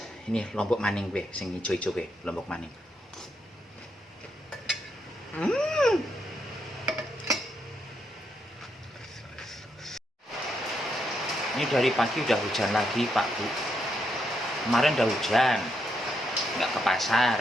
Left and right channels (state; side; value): normal; both; correlation 0.80